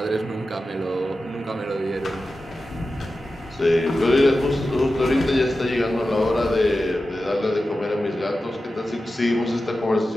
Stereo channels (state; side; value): normal; both; correlation 0.93